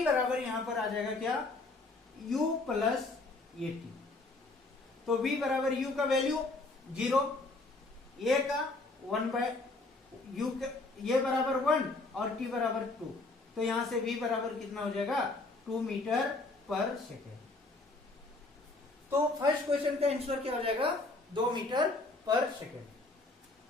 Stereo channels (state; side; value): quieter; right; 3.2 dB